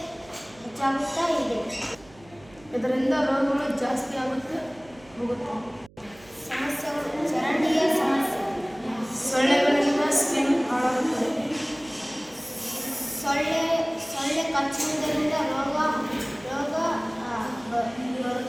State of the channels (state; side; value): noise; right; hum, 25 dB below the sound